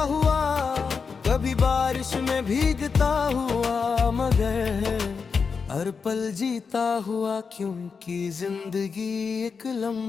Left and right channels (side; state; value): right; quieter; 5.4 dB